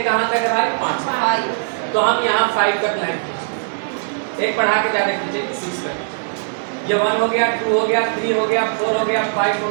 कहाँ तक है भाई? 5। तो हम यहाँ 5 तक लाइन खींचेंगे, एक बढ़ा के ज्यादा खींचेंगे 6 तक। ये 1 हो गया, 2 हो गया, 3 हो गया, 4 हो गया, 5 हो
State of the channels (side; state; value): left; silent; digital silence